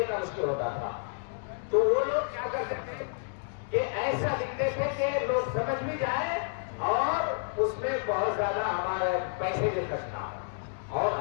مشکل ہوتا تھا، تو وہ لوگ کیا کرتے تھے کہ ایسا لکھتے تھے کہ لوگ سمجھ بھی جائیں اور اس میں بہت زیادہ ہمارے پیسے بھی خرچ نہ ہو۔ اور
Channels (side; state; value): right; silent; digital silence